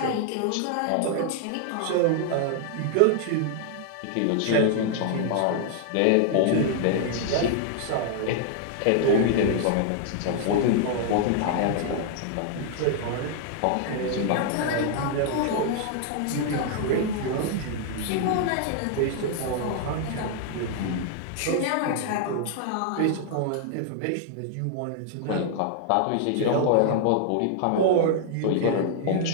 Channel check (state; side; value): different; both; correlation 0.00